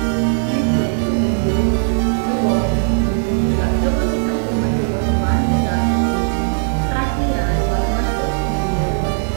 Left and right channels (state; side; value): silent; left; digital silence